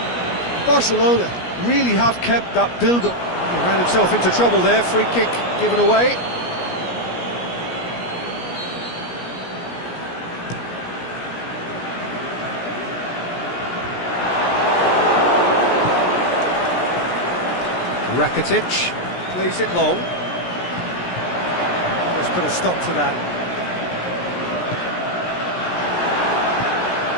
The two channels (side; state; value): right; late; 17 ms